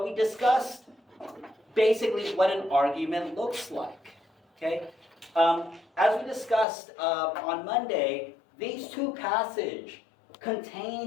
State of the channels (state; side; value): drops out; right; at 6.7 s